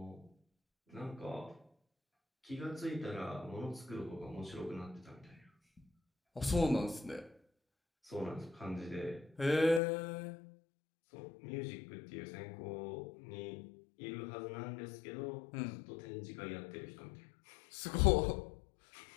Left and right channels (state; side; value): drops out; right; at 9.8 s